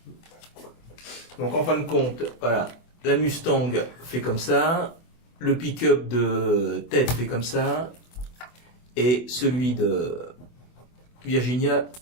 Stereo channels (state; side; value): late; right; 24 ms